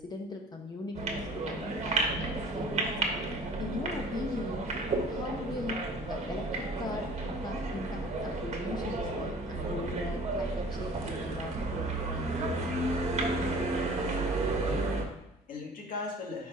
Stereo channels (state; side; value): normal; both; correlation 0.47